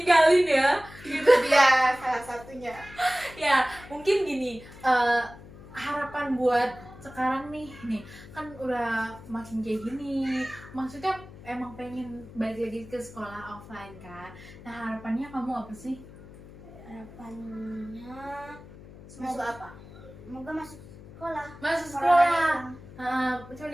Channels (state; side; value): noise; left; hum, 18 dB below the sound